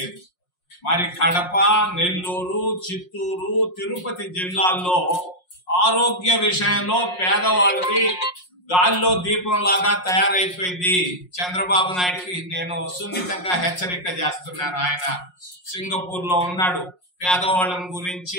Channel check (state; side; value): late; right; 5.5 ms